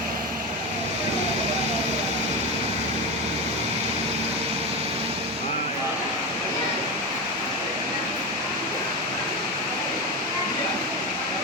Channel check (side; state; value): both; normal; correlation 0.18